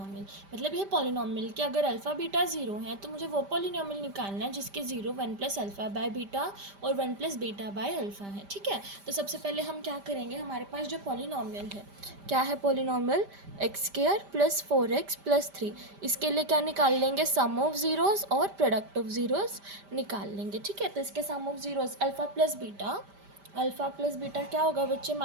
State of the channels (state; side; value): late; left; 5.1 ms